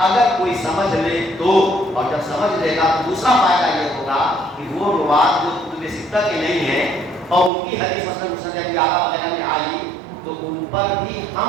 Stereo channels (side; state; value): left; drops out; at 7.5 s